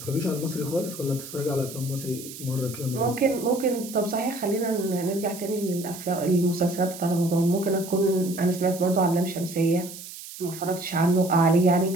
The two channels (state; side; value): noise; right; hiss, 13 dB below the sound